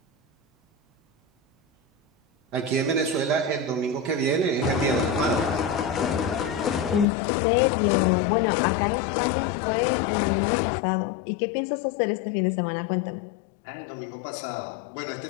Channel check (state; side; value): drops out; right; at 7.1 s